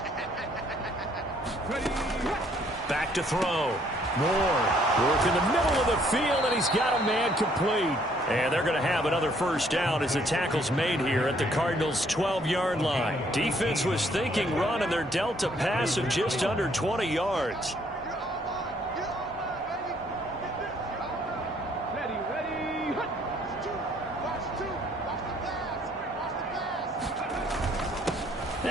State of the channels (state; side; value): normal; both; correlation 0.65